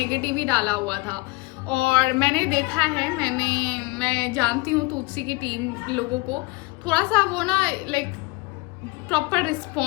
ही डाला हुआ था। और मैंने देखा है, मैं जानती हूँ तुलसी की टीम लोगों को, थोड़ा सा वो ना लाइक प्रॉपर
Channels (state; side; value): quieter; right; 24.0 dB